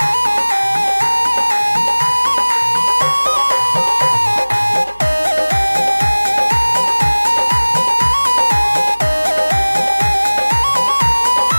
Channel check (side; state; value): both; inverted; correlation -1.00